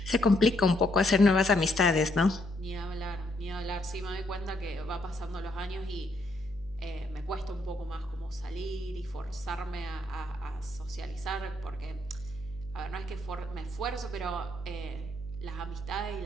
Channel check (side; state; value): left; noise; hum, 15 dB below the sound